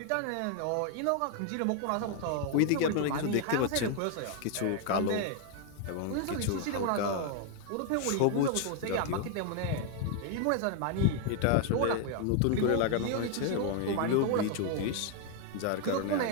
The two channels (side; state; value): both; different; correlation 0.00